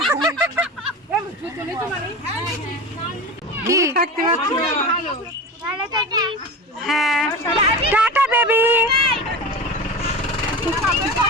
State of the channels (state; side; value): normal; both; correlation 0.28